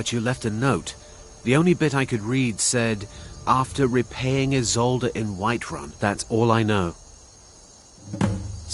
you left a note. The only bit I could read said, after repaying Isolde in Whiterun. That's all I know.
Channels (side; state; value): both; identical; correlation 1.00